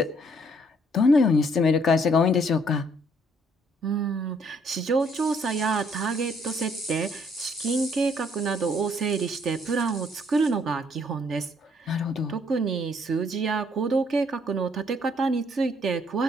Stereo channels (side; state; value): both; normal; correlation 0.66